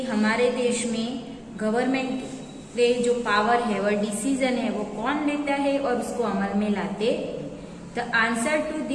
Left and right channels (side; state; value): both; identical; correlation 1.00